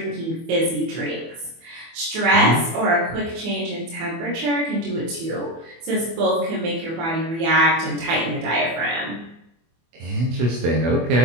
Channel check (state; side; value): late; left; 24 ms